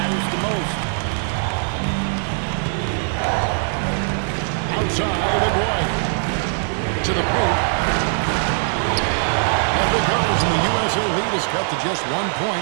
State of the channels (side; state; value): left; silent; 60 dB below the other